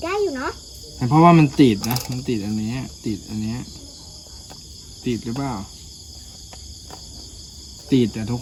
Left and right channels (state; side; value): identical; both; correlation 1.00